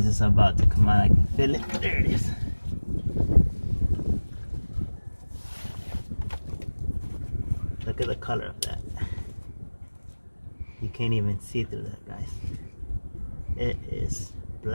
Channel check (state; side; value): inverted; both; correlation -1.00